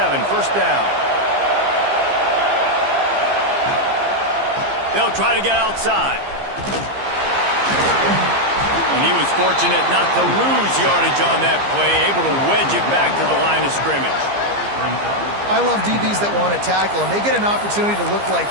first down. They'll try to get outside. And he was fortunate not to lose yardage on that play, able to wedge it back to the line of scrimmage. I love DBs that want to tackle, and they get an opportunity to look like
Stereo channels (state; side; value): late; left; 15 ms